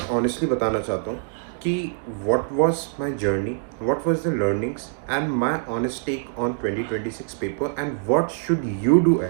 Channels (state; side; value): silent; left; digital silence